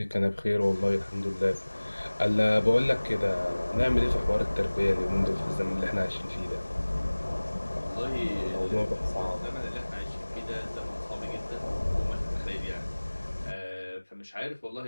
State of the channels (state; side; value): inverted; both; correlation -1.00